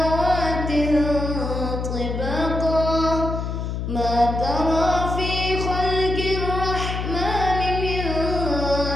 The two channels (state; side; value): noise; left; hum, 3 dB below the sound